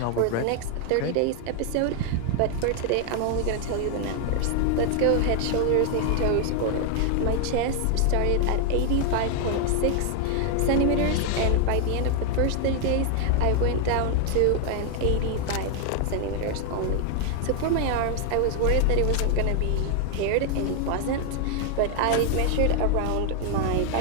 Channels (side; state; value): both; different; correlation 0.00